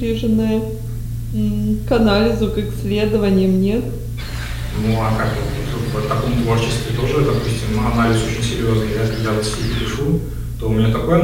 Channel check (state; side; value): identical; both; correlation 1.00